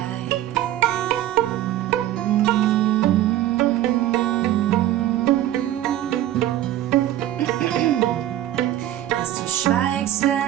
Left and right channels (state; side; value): quieter; left; 13.3 dB